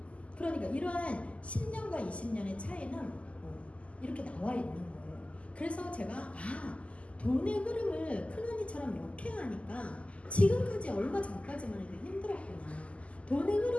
그러니까 이러한 10년과 20년의 차이는 이렇게 나와 있는 거예요. 그래서 제가 돈의 흐름을 큰언니처럼 역행하니까 지금까지 얼마 전까지만 해도 힘들었구나. 돈의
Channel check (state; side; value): late; right; 0.062 ms